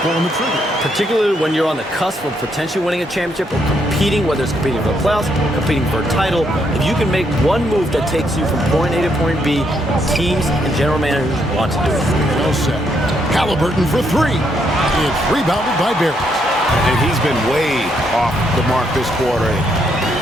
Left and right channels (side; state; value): both; normal; correlation 0.75